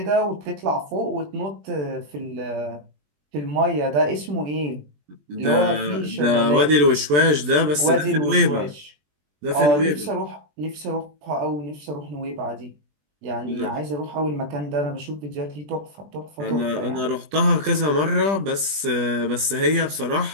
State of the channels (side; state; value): left; late; 20 ms